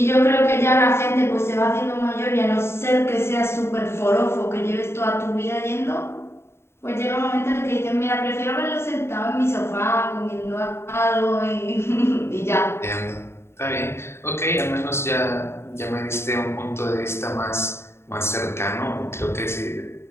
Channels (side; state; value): right; late; 0.12 ms